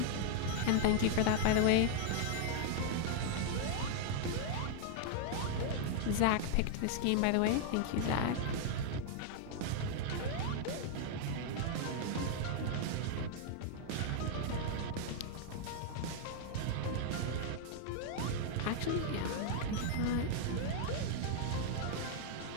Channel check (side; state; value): both; different; correlation -0.01